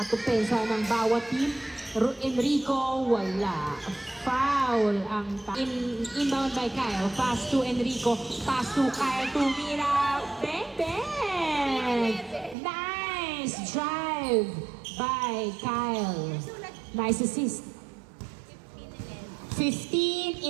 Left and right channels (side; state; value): left; drops out; at 12.6 s